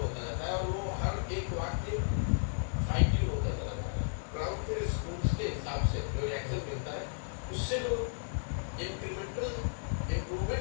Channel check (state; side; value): silent; right; 55 dB below the other